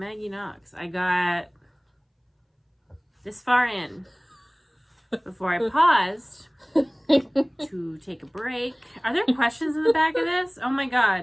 Knox. I got this far in before I paused to take a break. Are there questions in the back of this? Oh my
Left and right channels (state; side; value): identical; both; correlation 1.00